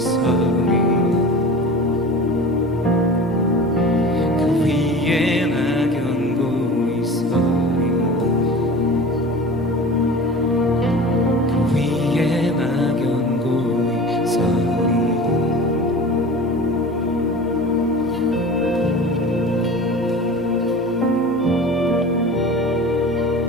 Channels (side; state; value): both; normal; correlation 0.36